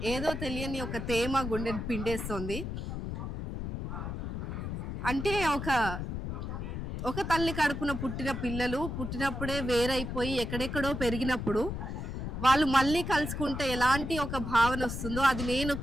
ఏదో తెలియని ఒక తేమ గుండెని పిండేస్తుంది. అంటే ఒక తల్లి కడుపున పుట్టిన పిల్లలు పుట్టినప్పుడే వేరైపోయి ఎక్కడెక్కడో పెరిగినప్పుడు వాళ్ళు మళ్ళీ కలుసుకుంటే ఎలాంటి ఒక భావన వస్తుందో అది నేను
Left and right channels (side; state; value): left; noise; rumble, 5 dB below the sound